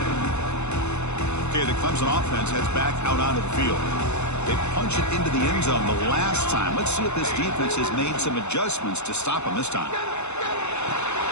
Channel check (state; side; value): late; right; 0.82 ms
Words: Okay, the Clemson offense heads back out onto the field. They punch it into the end zone the last time. Let's see if this defense has made some adjustments to stop him this time.